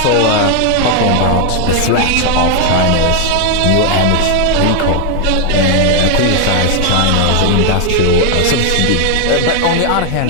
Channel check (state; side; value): different; both; correlation 0.01